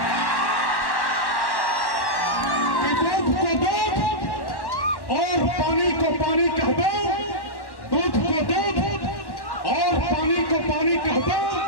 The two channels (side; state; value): right; late; 1.1 ms